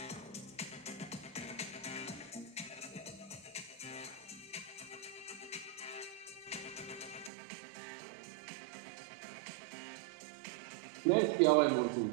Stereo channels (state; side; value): drops out; left; at 7.3 s